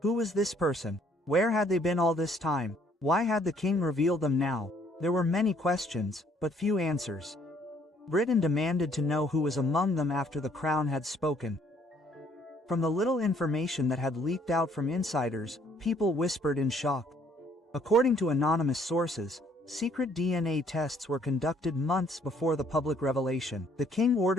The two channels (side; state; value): both; normal; correlation 0.64